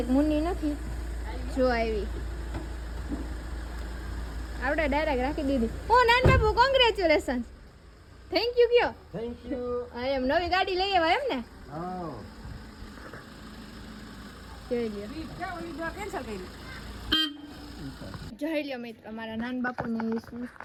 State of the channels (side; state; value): both; identical; correlation 1.00